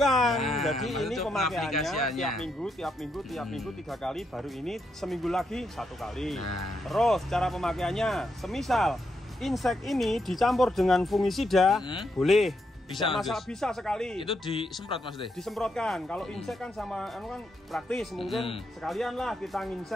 Jadi ini pemakaiannya tiap minggu 3 kali, baru ini seminggu lagi 1 kali. Terus cara pemakaiannya, semisal insek ini dicampur dengan fungisida, boleh. Bisa sekali. Itu disemprot Mas Teh? Disemprotkan. Kalau insek kan sama kan praktis, mungkin sekalian lah kita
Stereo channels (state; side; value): normal; both; correlation 0.80